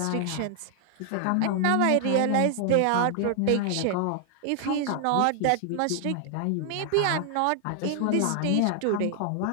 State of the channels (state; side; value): different; both; correlation 0.00